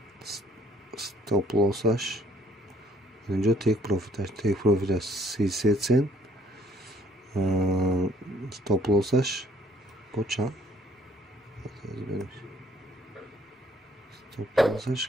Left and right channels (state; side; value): normal; both; correlation 0.63